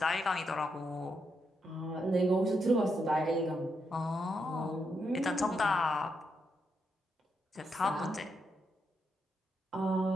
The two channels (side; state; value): both; normal; correlation 0.81